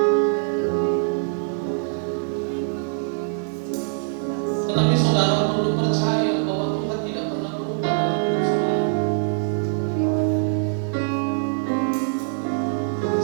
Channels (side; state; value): left; silent; 63 dB below the other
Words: Tetapi saudara perlu percaya bahwa Tuhan tidak pernah berubah dalam hidup saudara.